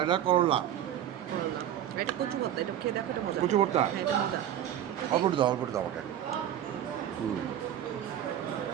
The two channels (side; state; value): left; quieter; 10.9 dB